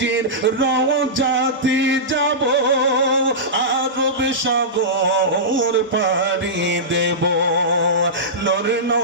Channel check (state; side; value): normal; both; correlation -0.16